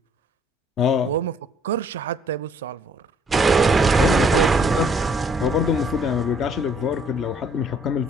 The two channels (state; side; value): normal; both; correlation 0.63